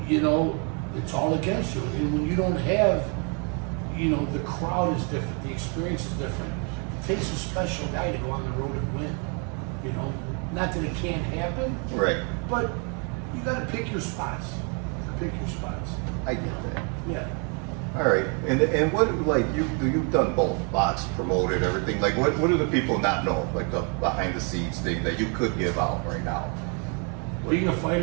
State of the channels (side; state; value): left; quieter; 37.0 dB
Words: it's all against you. And when you don't have you know, the crowd is different, the experience is different. It takes a special guy to go on the road and win. You know, not that it can't happen, Right. but you got to pick your spots. Pick your spots. I get that. Yeah. All right, and what, like, you've done both, box, promoted, everything. Like, what do the people not know, like the behind the scenes thing that you could give out right now? Being a